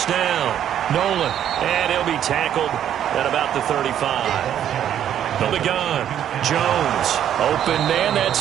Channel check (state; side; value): quieter; left; 10.2 dB